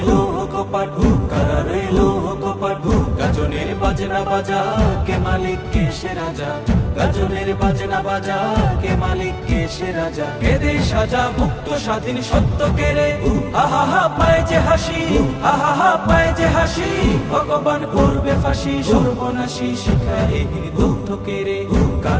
কপাট, কারা রইল কপাট, গাজনের বাজনা বাজা কে মালিক কে সে রাজা, গাজনের বাজনা বাজা কে মালিক কে সে রাজা, কেদে সাজা মুক্ত স্বাধীন সত্য কেড়ে, আহা হা পায় যে হাসি, আহা হা পায় যে হাসি, ভগবান করবে ফাঁসি, সর্বনাশী শিখায় দুঃখ কেড়ে,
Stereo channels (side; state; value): both; identical; correlation 1.00